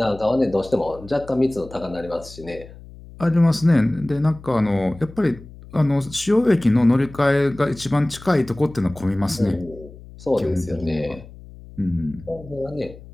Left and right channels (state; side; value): noise; left; hum, 18 dB below the sound